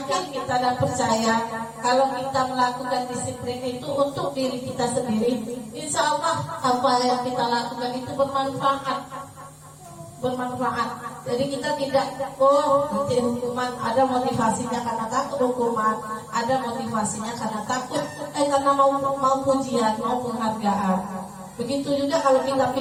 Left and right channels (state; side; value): identical; both; correlation 1.00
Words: kita dan percaya kalau kita melakukan disiplin itu untuk diri kita sendiri, insya Allah apa yang kita lakukan itu bermanfaat. Jadi kita tidak nanti hukuman, ada motivasinya karena takut hukuman, ada motivasinya karena takut karena mau pujian, mau penghargaan. Begitu juga kalau kita